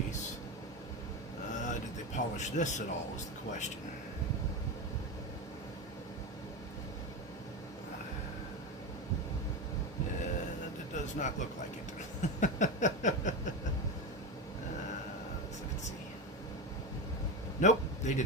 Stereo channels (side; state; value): both; normal; correlation 0.18